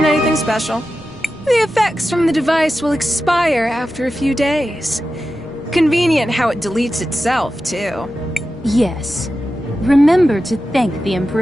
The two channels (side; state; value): right; noise; rumble, 25 dB below the sound